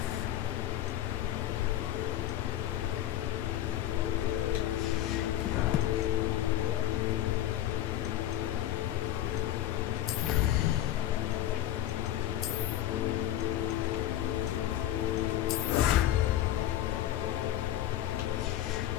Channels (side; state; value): right; quieter; 12.8 dB